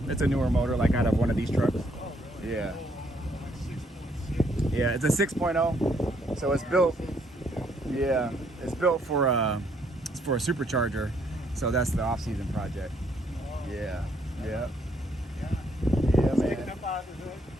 newer motor, like out of one of these trucks. Oh, really? Yeah. Like 6.6. Yeah, it's a 6.0. So it's built. Yeah, it's built for a supercharger. So that's the off-season project. Oh. Yeah. Yeah. Yeah. Yeah, Sticking man. up out of the hood?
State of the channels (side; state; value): both; normal; correlation 0.70